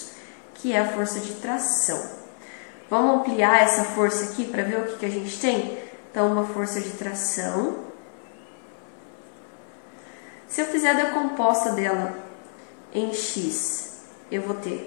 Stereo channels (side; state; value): right; silent; 58 dB below the other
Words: que é a força de tração. Vamos ampliar essa força aqui para ver o que a gente tem? Então, uma força de tração. Se eu fizer a decomposta dela em x, eu vou